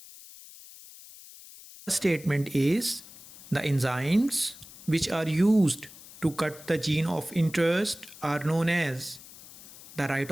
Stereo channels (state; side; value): noise; left; hiss, 19 dB below the sound